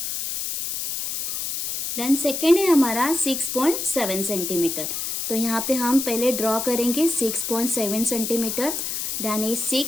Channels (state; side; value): noise; left; hiss, 3 dB below the sound